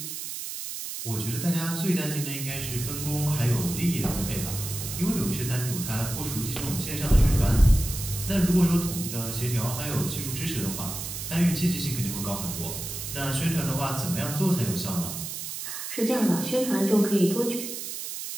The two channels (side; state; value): right; noise; hiss, 7 dB below the sound